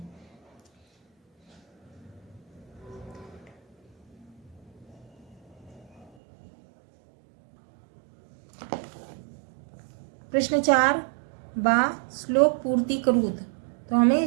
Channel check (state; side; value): drops out; left; at 6.1 s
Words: प्रश्न 4 बा श्लोक पूर्ति करूत, तो हमें